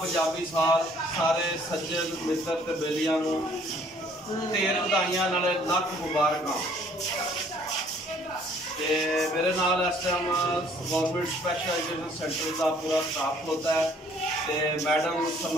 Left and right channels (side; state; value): both; normal; correlation 0.59